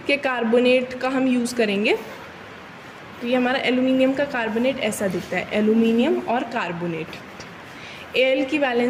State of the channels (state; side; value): identical; both; correlation 1.00